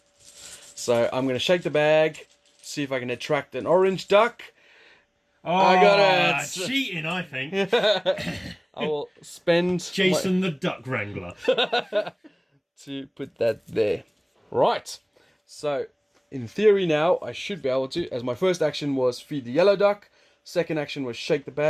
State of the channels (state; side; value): identical; both; correlation 1.00